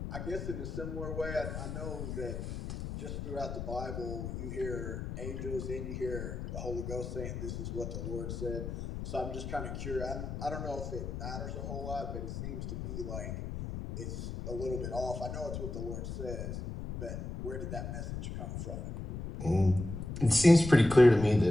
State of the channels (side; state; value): left; noise; rumble, 6 dB below the sound